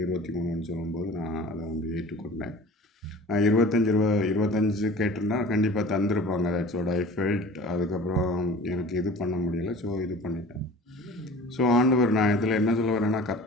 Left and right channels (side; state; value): both; normal; correlation 0.42